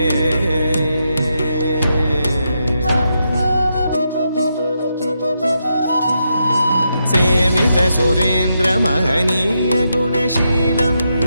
सेवित सुरेन्द्र महनीय गुणशीलम्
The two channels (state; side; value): inverted; both; correlation -0.83